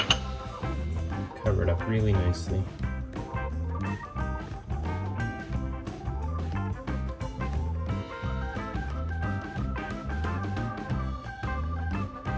cover it up really nicely.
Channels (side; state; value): both; identical; correlation 1.00